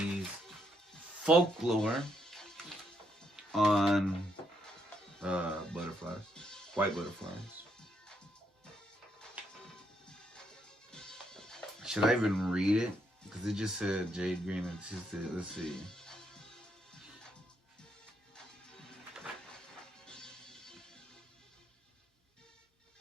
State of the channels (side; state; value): both; normal; correlation 0.76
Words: folklore on butterflies, white butterflies. Should I even read it? Because it just said Jade Green and let's see.